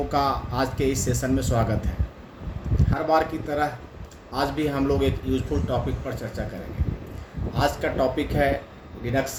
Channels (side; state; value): both; identical; correlation 1.00